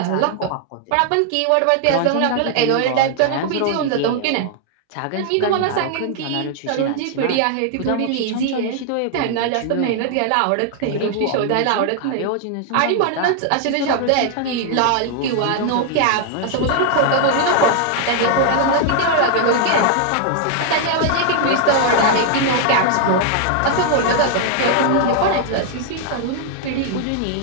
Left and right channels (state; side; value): different; both; correlation 0.00